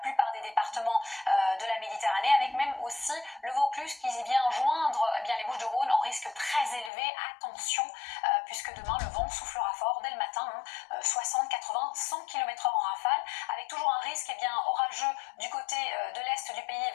des départements de la Méditerranée, avec même aussi le Vaucluse qui vient joindre les Bouches-du-Rhône en risque très élevé. Attention puisque demain le vent soufflera fort dès le matin, 60, 80, 100 km/h en rafale, avec toujours un risque orageux du côté de l'est du pays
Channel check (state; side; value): drops out; right; at 6.9 s